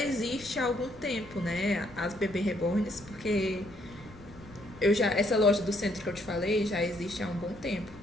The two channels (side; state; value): left; noise; rumble, 21 dB below the sound